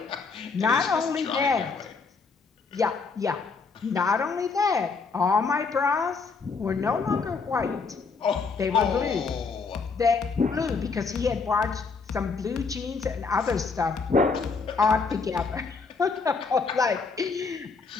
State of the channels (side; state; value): right; quieter; 4.7 dB